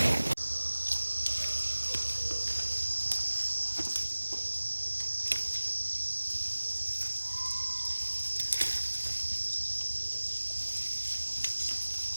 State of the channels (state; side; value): inverted; both; correlation -1.00